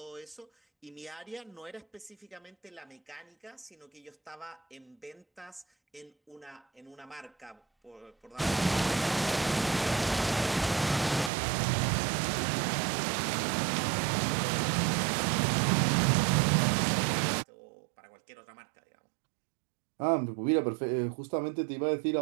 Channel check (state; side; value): drops out; left; at 11.3 s